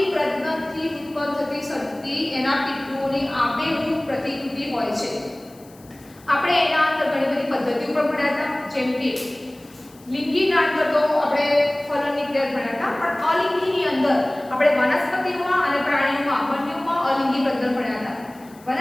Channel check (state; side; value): noise; left; hiss, 26 dB below the sound